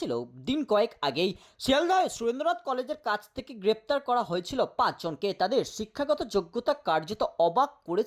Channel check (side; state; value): both; identical; correlation 1.00